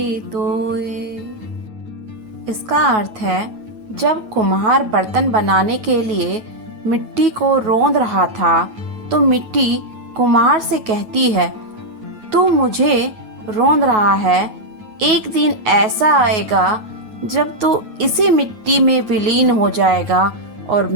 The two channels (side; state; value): left; late; 9.3 ms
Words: तोए। इसका अर्थ है, जब कुम्हार बर्तन बनाने के लिए मिट्टी को रौंद रहा था, तो मिट्टी कुम्हार से कहती है, तू मुझे रौंद रहा है, एक दिन ऐसा आएगा जब तू इसी मिट्टी में विलीन हो जाएगा और